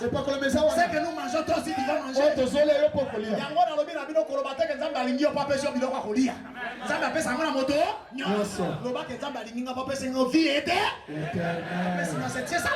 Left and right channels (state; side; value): identical; both; correlation 1.00